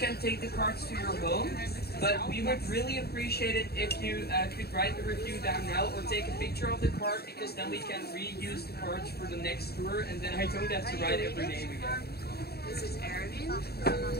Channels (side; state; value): right; late; 0.46 ms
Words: take the cards to your home. But we would really appreciate it if you could write the review down now or take a picture of the card, because then we can reuse the cards for the next tour, and then I don't have to write every name again. This is Erwin,